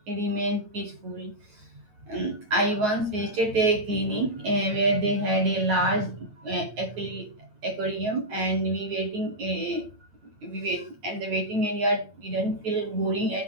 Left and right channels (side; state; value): left; late; 9.6 ms